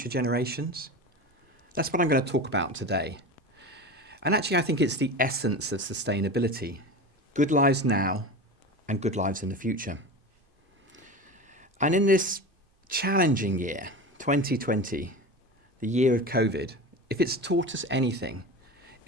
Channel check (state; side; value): late; right; 2.5 ms